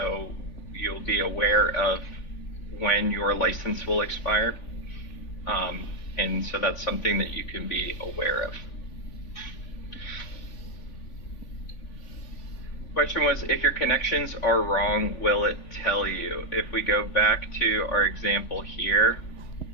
you'll be aware of when your license will expire. And so that's something that you can be aware of. Question was, if your connections are wrong, will it tell you? If we go back to our example here,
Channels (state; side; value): late; right; 3.5 ms